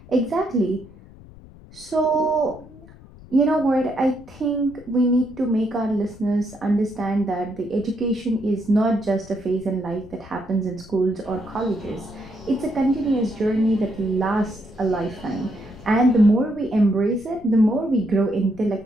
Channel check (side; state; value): left; noise; rumble, 21 dB below the sound